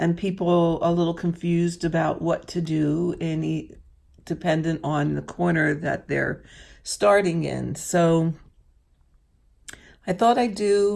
people a little confused about what to do dependent on the corner that they're starting in. So I thought I'd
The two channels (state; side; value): identical; both; correlation 1.00